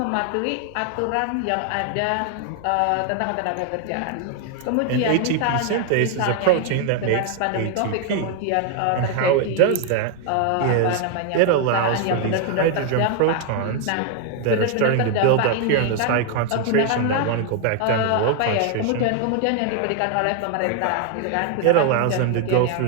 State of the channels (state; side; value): different; both; correlation 0.00